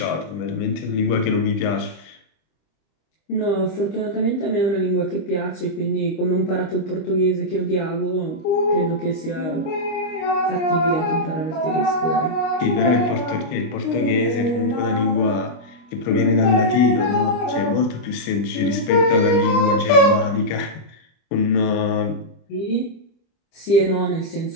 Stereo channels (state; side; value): late; right; 25 ms